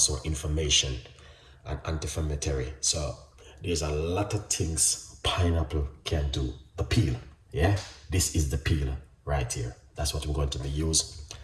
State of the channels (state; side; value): identical; both; correlation 1.00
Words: inflammation and anti-inflammatory. So there's a lot of things pineapple can do. The peel, yeah? This is the peel right here. That's what we're going to be used